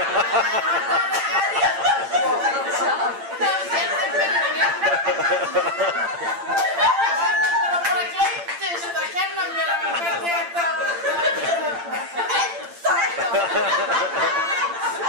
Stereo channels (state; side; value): late; left; 8.8 ms